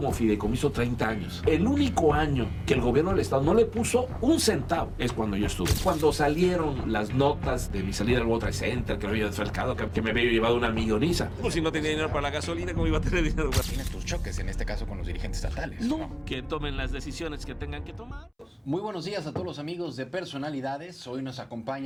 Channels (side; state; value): both; identical; correlation 1.00